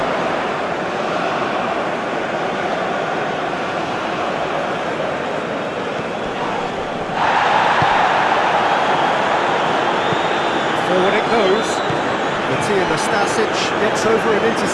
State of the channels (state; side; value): identical; both; correlation 1.00